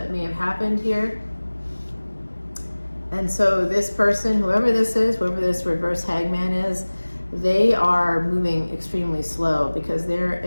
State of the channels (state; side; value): inverted; both; correlation -1.00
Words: may have happened here. And so this person, whoever this is, whoever this reverse hangman is, they are moving extremely slow because they're